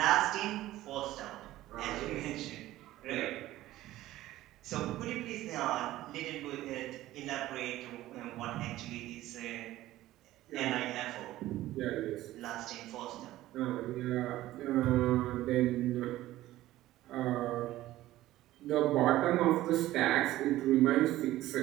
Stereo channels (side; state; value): left; quieter; 15.5 dB